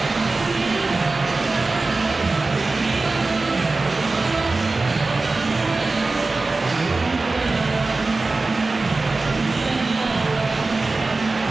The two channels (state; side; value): quieter; left; 3.5 dB